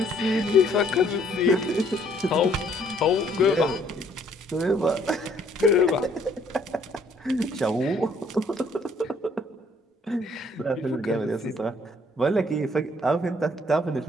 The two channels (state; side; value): normal; both; correlation 0.63